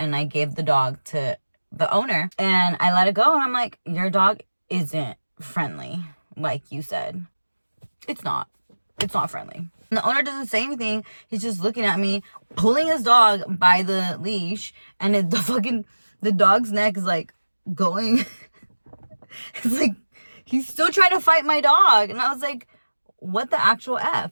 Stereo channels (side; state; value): both; inverted; correlation -1.00